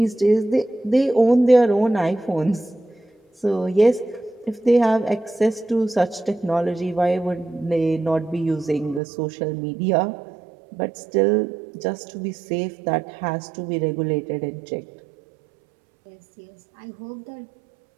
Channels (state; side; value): drops out; left; at 9.0 s